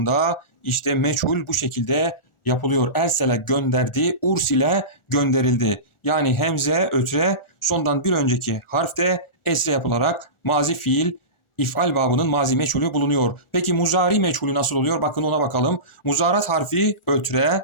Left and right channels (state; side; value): late; right; 1.4 ms